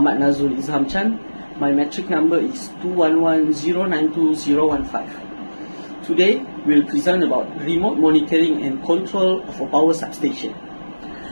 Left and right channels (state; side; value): inverted; both; correlation -1.00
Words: NADZRUL IDZHAM. My metric number is 211092015. Today, we will present about remote monitoring and control of a power substation.